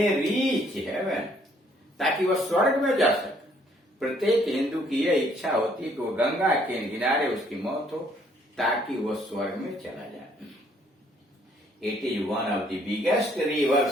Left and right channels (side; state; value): both; normal; correlation 0.65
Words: रीच हेवन, ताकि वह स्वर्ग में जा सके। प्रत्येक हिंदू की यह इच्छा होती है कि वो गंगा के किनारे उसकी मौत हो ताकि वह स्वर्ग में चला जाए। It is one of the biggest